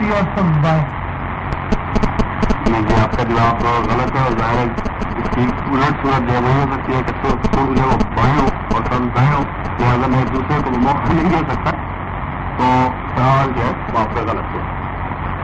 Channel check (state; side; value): identical; both; correlation 1.00